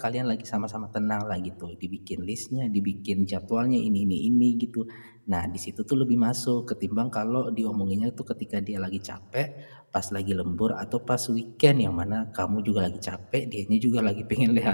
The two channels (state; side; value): inverted; both; correlation -1.00